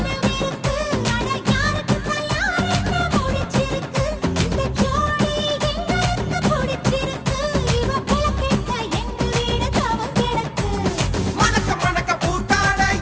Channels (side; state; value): both; identical; correlation 1.00